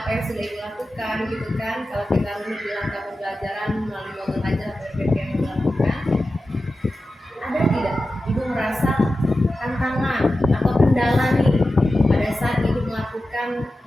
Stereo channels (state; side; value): normal; both; correlation 0.93